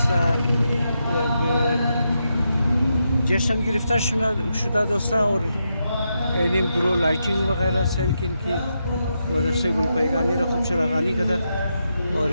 جشن گرفته شده دوستان اور این برو لایتینگ وغیرہ سیلکین کی مدرسه گلپایگانی را خوب چراغانی کرده اور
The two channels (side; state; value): both; inverted; correlation -0.84